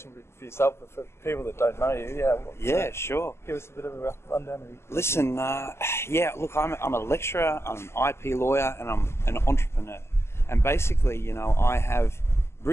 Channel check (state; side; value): late; right; 0.12 ms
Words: for yourself, but for people that don't know you, sure. Give us a bit of a rough rundown. Listen, look, I'm a lecturer, I'm an IP lawyer, and I'm an entrepreneur. And basically, I have